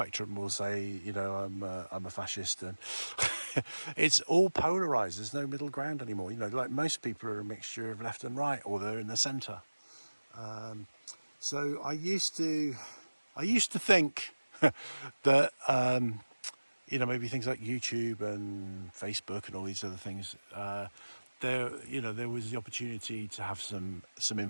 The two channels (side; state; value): both; inverted; correlation -1.00